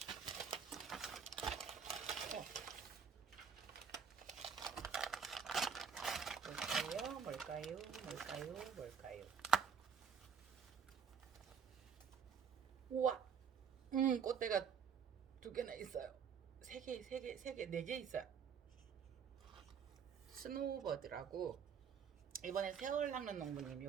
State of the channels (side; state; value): left; quieter; 6.8 dB